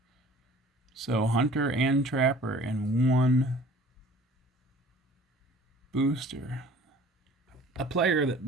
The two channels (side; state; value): both; normal; correlation 0.49